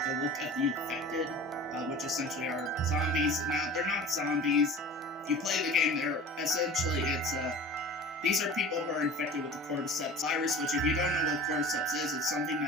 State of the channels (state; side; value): normal; both; correlation 0.38